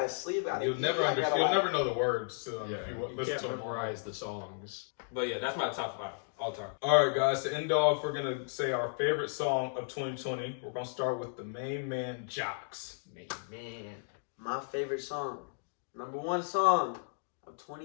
sleep. I gotta You'll eat, never I understand. gotta, You'll like- never know the words to them Yeah, if you you listen can't to them. memorize the songs. But yeah, that's my top 5 all time. All right, guys. To end off, we're gonna say our favorite song of 2020. We're gonna start with the main man, Jocks. Man. My favorite song, number one song of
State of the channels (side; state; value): right; silent; digital silence